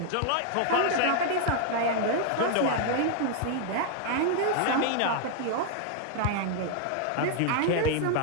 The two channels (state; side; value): different; both; correlation 0.00